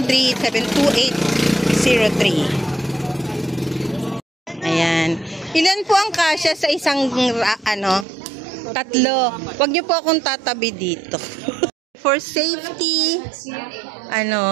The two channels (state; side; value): drops out; left; at 8.1 s